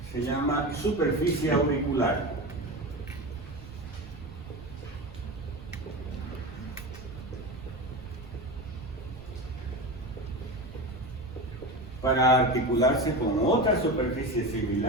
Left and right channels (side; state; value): right; noise; rumble, 17 dB below the sound